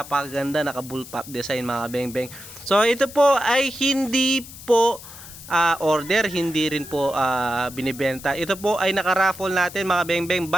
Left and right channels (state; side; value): noise; left; hiss, 16 dB below the sound